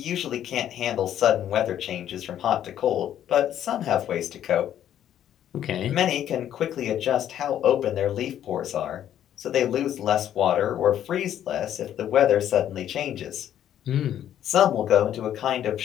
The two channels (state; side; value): quieter; right; 10.8 dB